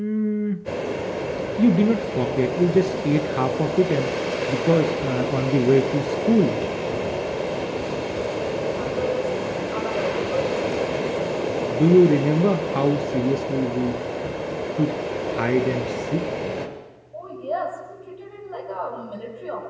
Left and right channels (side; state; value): both; identical; correlation 1.00